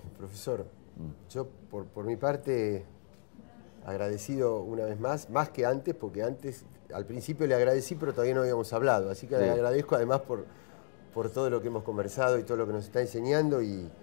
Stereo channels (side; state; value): right; silent; digital silence